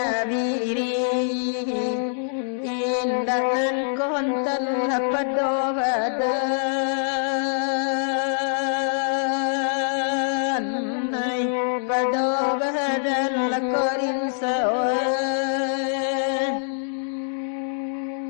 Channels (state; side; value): silent; right; digital silence